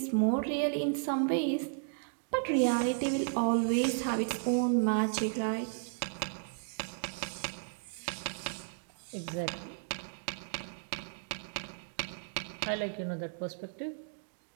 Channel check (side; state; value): left; silent; digital silence